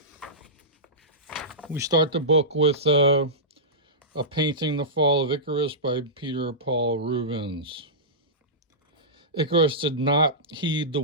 We start the book with a painting, The Fall of Icarus by Peter Paul Rubens. Icarus did not heed the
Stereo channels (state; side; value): normal; both; correlation -0.17